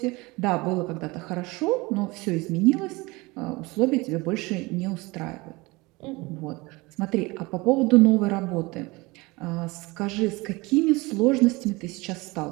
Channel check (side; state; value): left; quieter; 23.5 dB